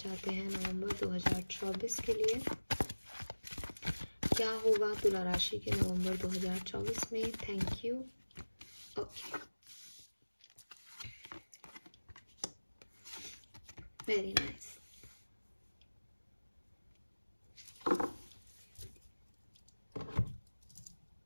हैं नवंबर 2024 के लिए। क्या होगा तुला राशि के नवंबर 2024 में। Thank you. Okay, very nice.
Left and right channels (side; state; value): both; inverted; correlation -1.00